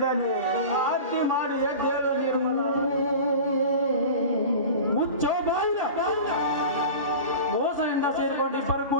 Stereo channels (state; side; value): inverted; both; correlation -0.34